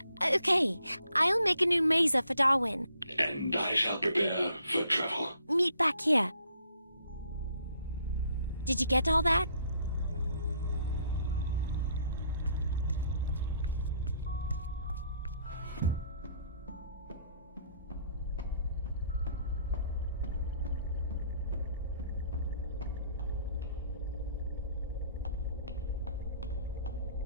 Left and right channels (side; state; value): both; inverted; correlation -0.66